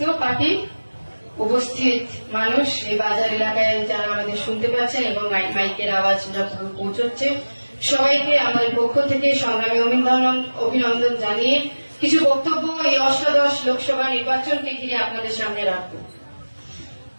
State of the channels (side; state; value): both; inverted; correlation -1.00